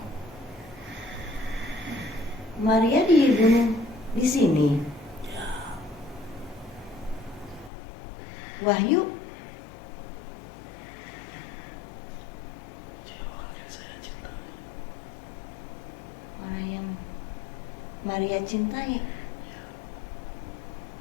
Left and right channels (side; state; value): right; drops out; at 7.7 s